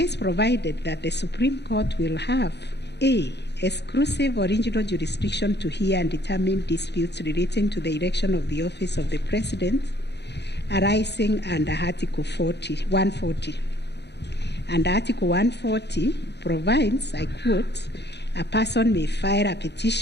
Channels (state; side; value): late; right; 0.50 ms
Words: provided that the Supreme Court will have A, exclusive original jurisdiction to hear and determine disputes relating to the election of the office of the President arising under Article 140. And Article 140 provides, I quote, a person may file a